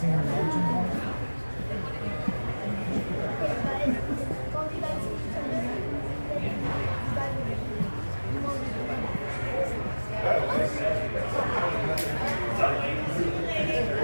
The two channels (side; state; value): both; inverted; correlation -1.00